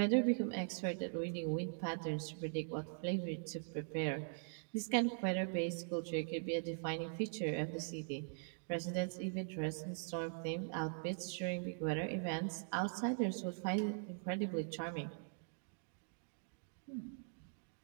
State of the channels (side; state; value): left; silent; digital silence